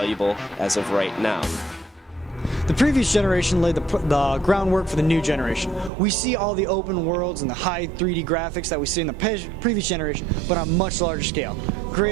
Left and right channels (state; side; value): drops out; left; at 5.9 s